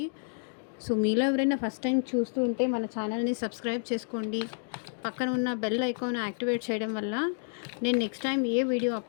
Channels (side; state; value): right; silent; digital silence